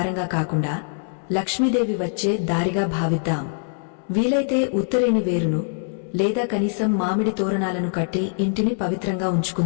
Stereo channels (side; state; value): right; silent; 63 dB below the other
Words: కాకుండా లక్ష్మీదేవి వచ్చే దారిగా భావిద్దాం. వీలైతే ఉత్తరేణి వేరును లేదా కనీసం మామిడి తోరణాలను కట్టి ఇంటిని పవిత్రంగా